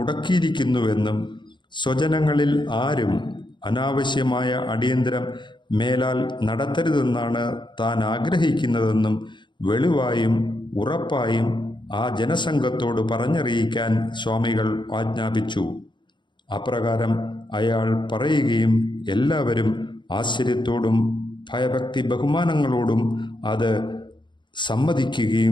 സ്വജനങ്ങളിൽ ആരും അനാവശ്യമായ അടിയന്തരം മേലാൽ നടത്തരുതെന്നാണ് താൻ ആഗ്രഹിക്കുന്നതെന്നും വെളിവായും ഉറപ്പായും ആ ജനസംഘത്തോട് പറഞ്ഞറിയിക്കാൻ സ്വാമികൾ ആജ്ഞാപിച്ചു. അപ്രകാരം അയാൾ പറയുകയും എല്ലാവരും ആശ്ചര്യത്തോടും ഭയഭക്തി ബഹുമാനങ്ങളോടും അത്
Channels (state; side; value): late; right; 0.23 ms